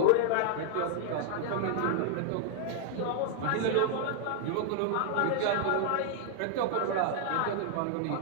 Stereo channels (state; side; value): different; both; correlation 0.00